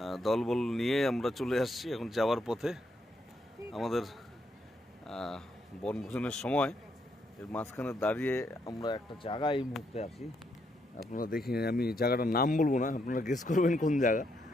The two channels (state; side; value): normal; both; correlation 0.76